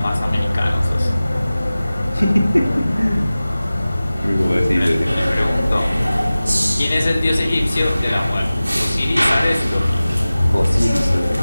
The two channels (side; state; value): both; inverted; correlation -0.97